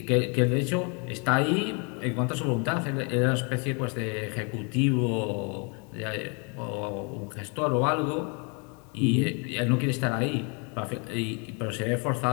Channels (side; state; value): right; quieter; 34.9 dB